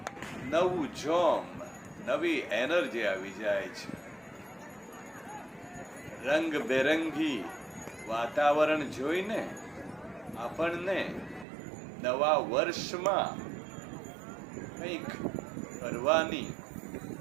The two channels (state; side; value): drops out; left; at 11.5 s